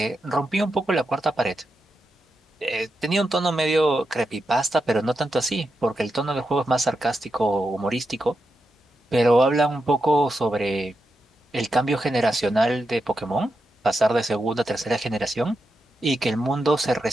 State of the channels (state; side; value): normal; both; correlation 0.87